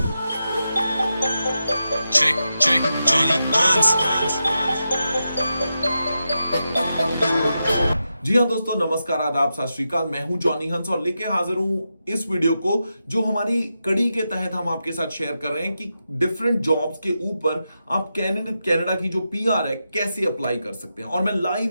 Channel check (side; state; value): both; inverted; correlation -0.88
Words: Check, check, Johnny Hans. जी हाँ दोस्तों, नमस्कार, आदाब, सत श्री अकाल। मैं हूं जॉनी हंस और लेके हाजिर हूं इस वीडियो को जो हमारी कड़ी के तहत हम आपके साथ शेयर कर रहे हैं कि डिफरेंट जॉब्स के ऊपर आप कनाडा की जो पीआर है कैसे अप्लाई कर सकते हैं। और मैं